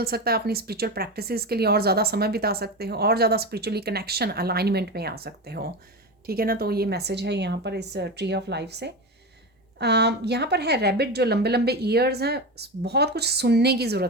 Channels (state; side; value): normal; both; correlation 0.21